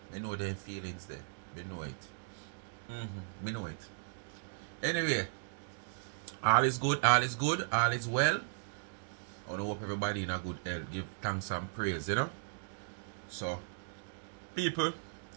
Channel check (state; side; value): silent; left; digital silence